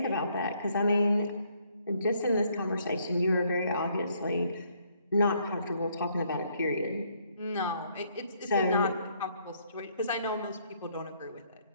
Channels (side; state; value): both; inverted; correlation -0.68